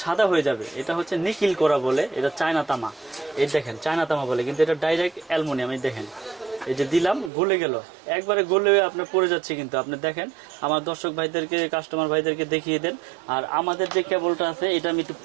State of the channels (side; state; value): left; drops out; at 7.3 s